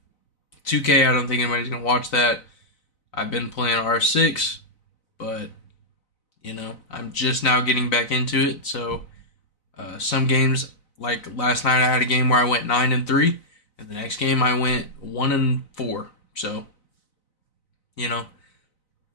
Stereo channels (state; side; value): late; right; 4.0 ms